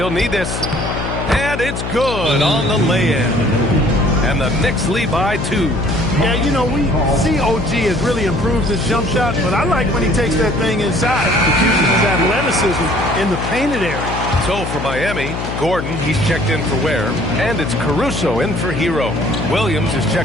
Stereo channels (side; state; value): left; noise; hum, 5 dB below the sound